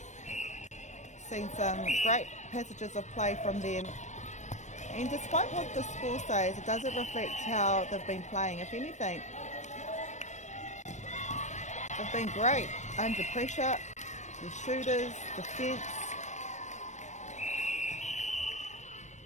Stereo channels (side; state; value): right; late; 0.34 ms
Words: Seen some great passages of play from them, and despite what the score says, it doesn't reflect how they've been playing. If anything, they've been great under pressure, the shooters, defence.